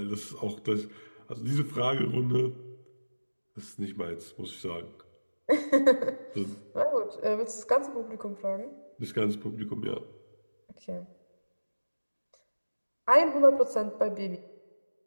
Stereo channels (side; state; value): both; inverted; correlation -1.00